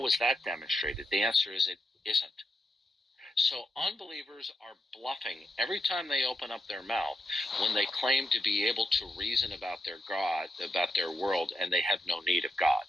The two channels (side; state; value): both; normal; correlation 0.84